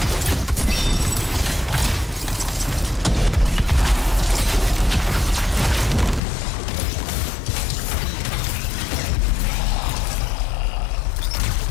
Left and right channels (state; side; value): drops out; right; at 6.2 s